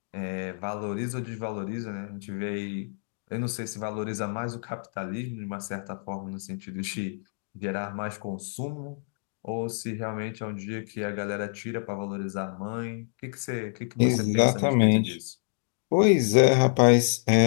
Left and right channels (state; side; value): silent; right; digital silence